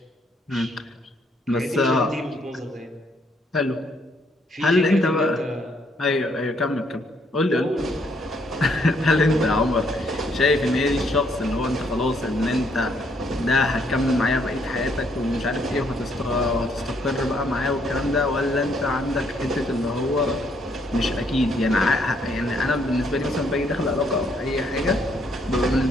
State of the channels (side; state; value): both; normal; correlation 0.70